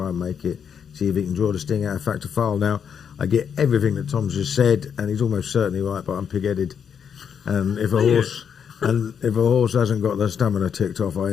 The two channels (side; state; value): right; quieter; 7.6 dB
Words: and make it, see if he can draw the sting out of Factor File. Now, I get everything that Tom's just said, and he's almost certainly right, but I'm pig-headed. And if a horse hasn't got the stamina ticked off, I